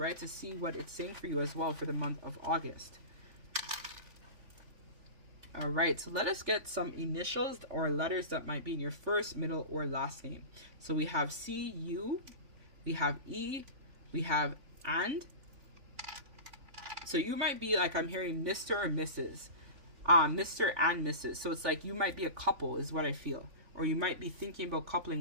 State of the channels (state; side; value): late; left; 3.5 ms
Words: to see what it's saying for you as well for the month of August. All right, so let us get some initials or letters that might be in your first, middle, or last name. So we have C, U, we have E, we have and. So you might be like, I'm hearing Mr. or Mrs. Mr. and Mrs. So it's like you might be a couple is what I feel. Or you might be thinking about coupling